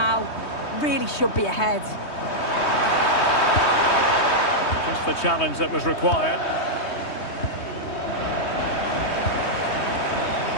Really should be ahead. Just the challenge that was required.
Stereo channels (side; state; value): right; late; 3.2 ms